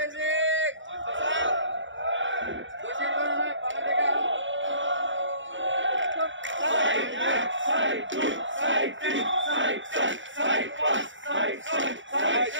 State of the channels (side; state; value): left; late; 0.55 ms